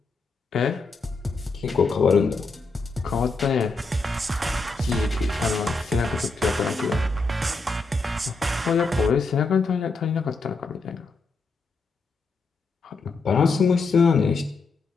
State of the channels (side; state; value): right; quieter; 3.9 dB